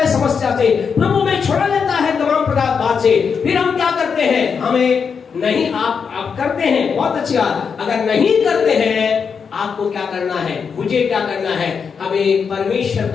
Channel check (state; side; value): quieter; right; 6.1 dB